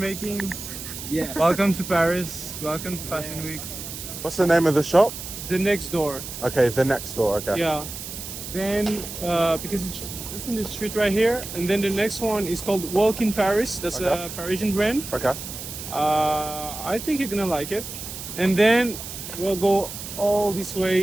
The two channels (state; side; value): noise; right; hiss, 9 dB below the sound